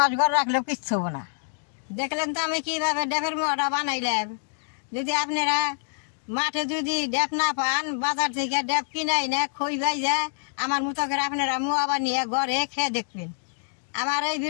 ঘরে রাখলেও কিচ্ছু হবো না। দেখলেন তো আমি কীভাবে ডেপের মোয়াটা বানাইলাম। যদি আপনারা মাঠে যদি ডেপ না পান, বাজার থেকে ডেপ কিনাই না খই বাইজা আমার মতো করে আপনারা মোয়া বানিয়ে ঘরে খেয়ে দেখবেন। আমার এই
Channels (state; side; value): silent; right; digital silence